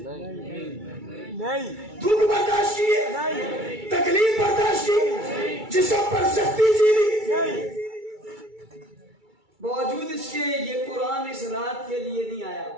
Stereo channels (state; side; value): late; left; 2.3 ms